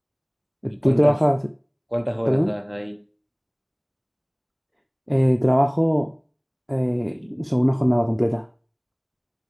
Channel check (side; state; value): both; identical; correlation 1.00